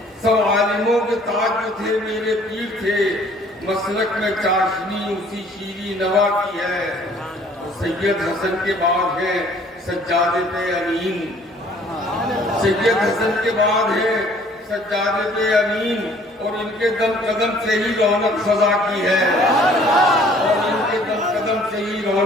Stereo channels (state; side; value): normal; both; correlation 0.56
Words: سب عالموں کے تاج جو تھے میرے پیر تھے، مسلک میں چاشنی اسی شیریں نوا کی ہے۔ اور سید حسن کے بعد ہے سجادے پہ امین، سید حسن کے بعد ہے سجادے پہ امین، اور ان کے دم قدم سے ہی رونق فضا کی ہے، اور ان کے دم قدم سے ہی